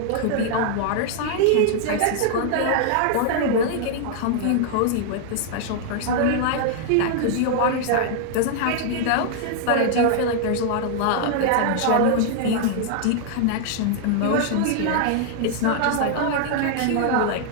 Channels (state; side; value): different; both; correlation 0.00